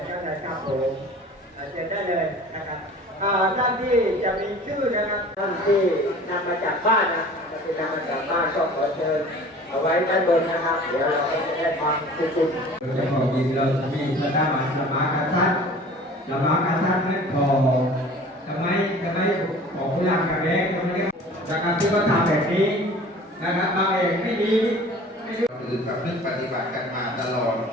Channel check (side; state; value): both; normal; correlation 0.44